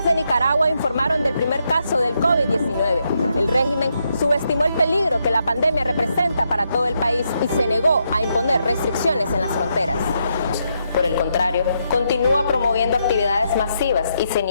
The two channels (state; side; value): inverted; both; correlation -0.80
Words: de Nicaragua informaron del primer caso del COVID-19. El régimen subestimó el peligro que la pandemia representa para todo el país y se negó a imponer restricciones en las fronteras. Por el contrario, continúa promoviendo actividades masivas y se